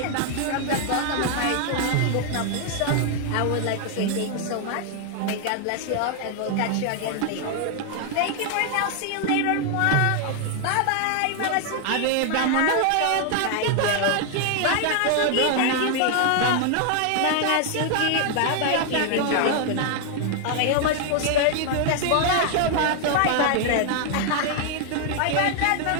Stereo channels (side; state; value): both; different; correlation 0.00